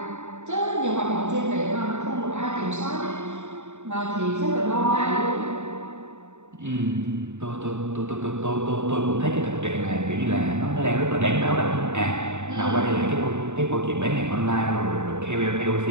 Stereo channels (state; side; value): late; left; 0.84 ms